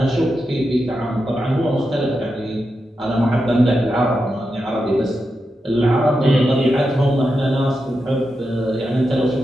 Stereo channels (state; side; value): normal; both; correlation 0.88